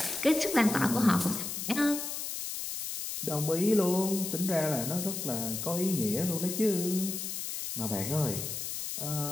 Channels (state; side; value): noise; left; hiss, 5 dB below the sound